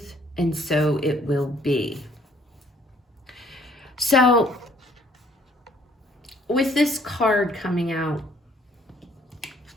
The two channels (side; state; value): both; normal; correlation 0.62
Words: and so it will be. So with this card coming out,